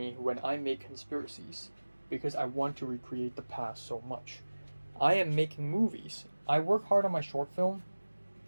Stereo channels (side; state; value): both; inverted; correlation -1.00